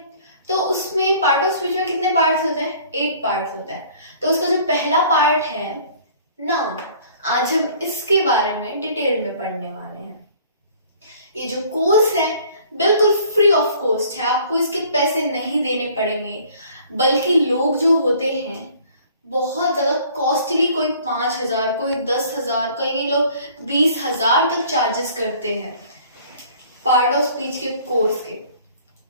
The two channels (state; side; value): inverted; both; correlation -0.53